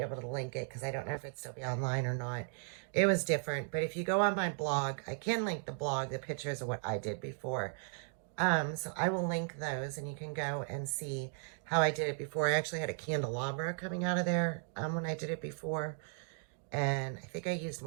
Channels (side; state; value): left; silent; 54 dB below the other